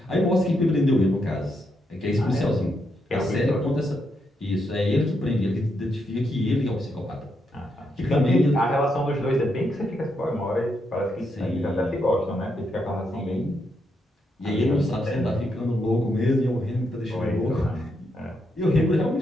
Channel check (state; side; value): normal; both; correlation 0.80